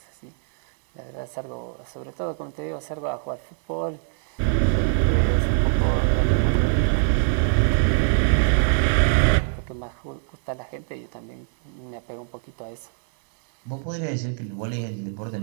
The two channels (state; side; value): silent; left; digital silence